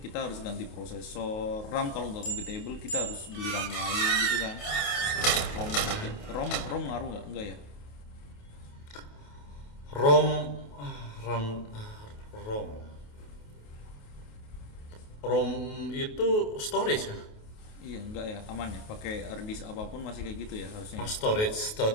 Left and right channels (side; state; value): right; late; 28 ms